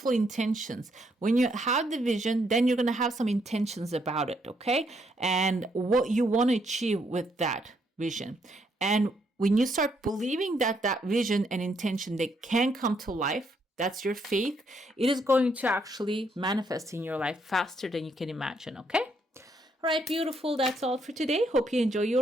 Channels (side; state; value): both; normal; correlation 0.73